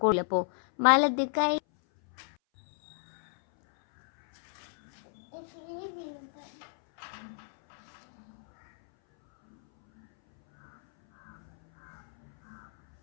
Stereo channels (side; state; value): right; silent; 56 dB below the other